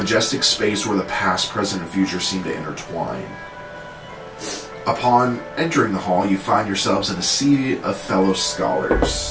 space where the past, present, and future seem to intertwine. Upon entering the hall, you find yourselves in a sea of fellow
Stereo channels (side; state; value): both; identical; correlation 1.00